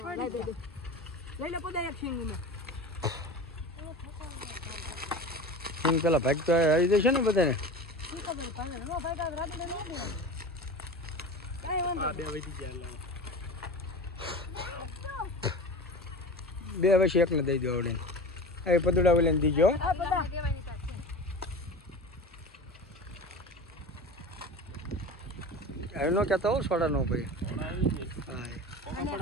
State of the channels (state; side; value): normal; both; correlation 0.32